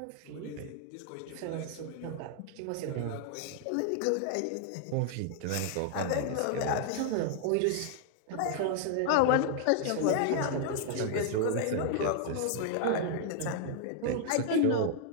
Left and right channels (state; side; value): different; both; correlation 0.00